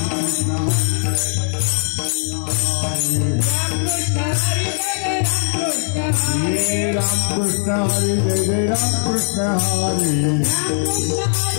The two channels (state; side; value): silent; right; 66 dB below the other